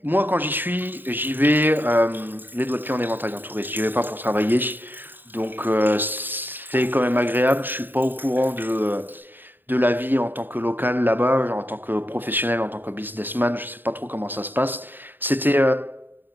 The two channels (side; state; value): left; late; 0.092 ms